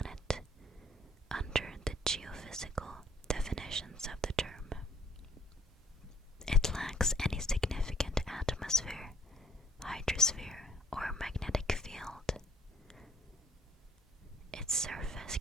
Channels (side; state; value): both; normal; correlation 0.63